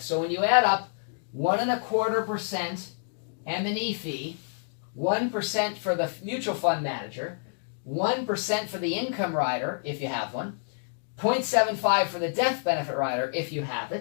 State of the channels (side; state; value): right; silent; digital silence